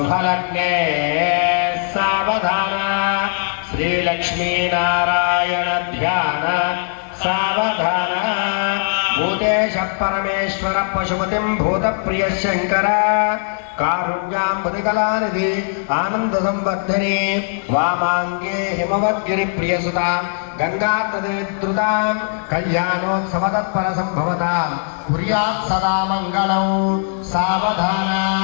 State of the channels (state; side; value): silent; right; digital silence